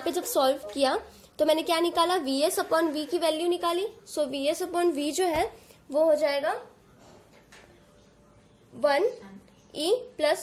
जब सॉल्व किया तो मैंने क्या निकाला, VS अपॉन V की वैल्यू निकाली। सो VS अपॉन V जो है वो हो जाएगा 1 E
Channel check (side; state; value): both; identical; correlation 1.00